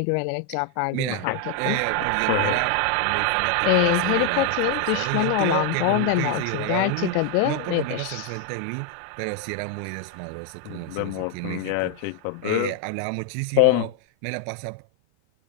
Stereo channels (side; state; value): both; different; correlation 0.01